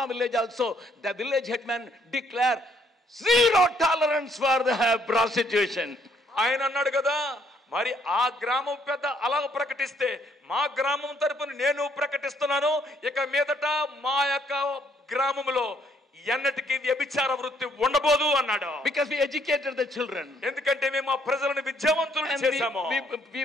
village also, the village headman declare zero tolerance for the prostitution. ఆయన అన్నాడు కదా, మరి ఆ గ్రామం పెద్ద అలా ప్రకటిస్తే మా గ్రామం తరపున నేను ప్రకటిస్తున్నాను, ఇక మీదట మా యొక్క గ్రామంలో ఎన్నటికీ వ్యభిచార వృత్తి ఉండబోదు అన్నాడు. Because we educated the children. ఎందుకంటే మేము ఆ ప్రజలను విద్యావంతులను చేశాము. We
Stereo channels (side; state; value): both; normal; correlation 0.67